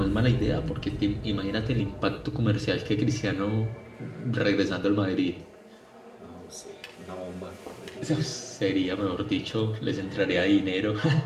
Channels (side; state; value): both; identical; correlation 1.00